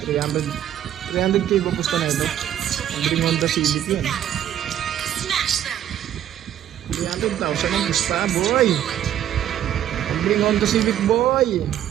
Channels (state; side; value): quieter; left; 11.1 dB